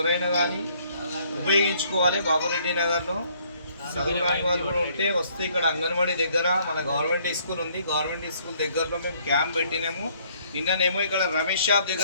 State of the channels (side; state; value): both; inverted; correlation -0.64